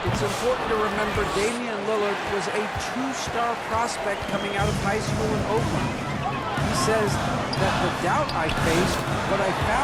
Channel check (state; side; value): identical; both; correlation 1.00